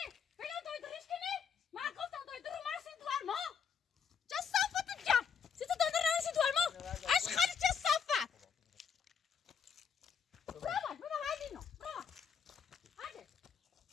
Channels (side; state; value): right; quieter; 7.0 dB